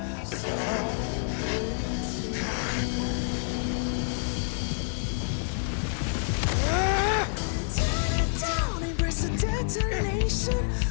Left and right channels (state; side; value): silent; right; digital silence